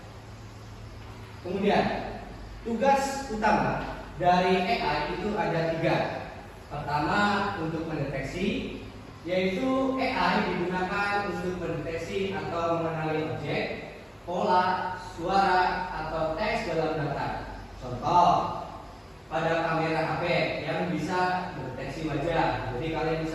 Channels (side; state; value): both; identical; correlation 1.00